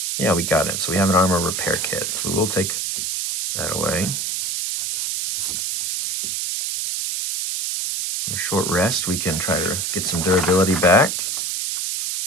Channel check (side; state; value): right; noise; hiss, 1 dB below the sound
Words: Yeah, we got it. So we have an armor repair kit. So we will take that away. On a short rest, we can try to get some durability back.